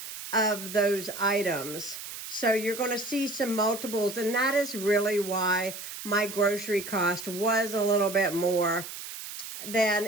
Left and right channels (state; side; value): noise; right; hiss, 10 dB below the sound